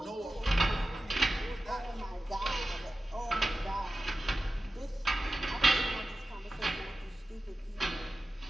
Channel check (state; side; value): normal; both; correlation 0.94